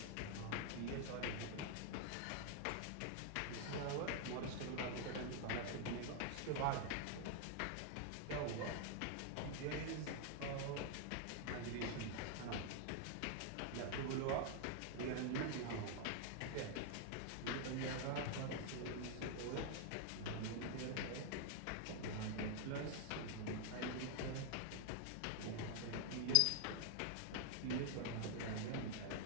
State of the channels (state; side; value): different; both; correlation 0.00